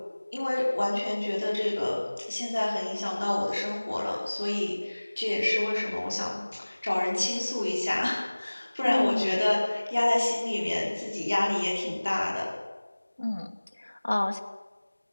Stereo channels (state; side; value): inverted; both; correlation -1.00